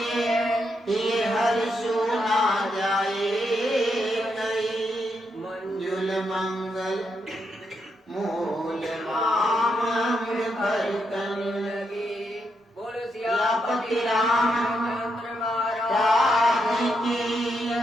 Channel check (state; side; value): normal; both; correlation 0.81